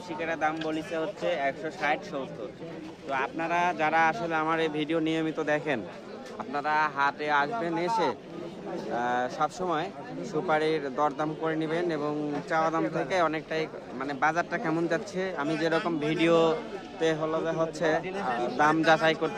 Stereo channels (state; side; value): identical; both; correlation 1.00